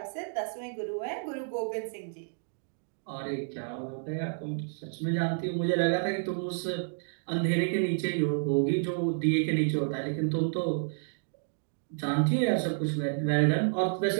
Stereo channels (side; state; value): left; silent; digital silence